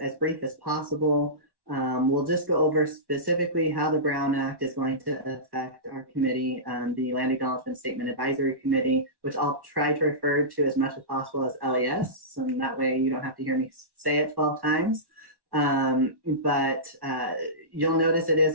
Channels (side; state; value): left; late; 1.1 ms